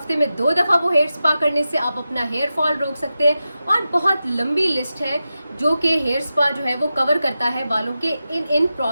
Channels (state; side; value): inverted; both; correlation -0.92